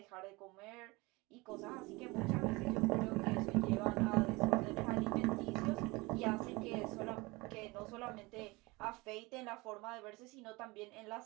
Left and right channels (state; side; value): quieter; left; 23.8 dB